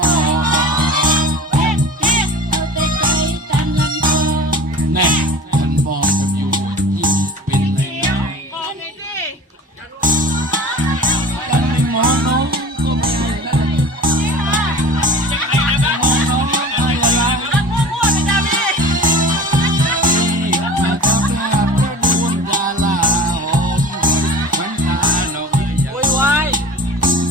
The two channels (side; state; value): both; normal; correlation 0.39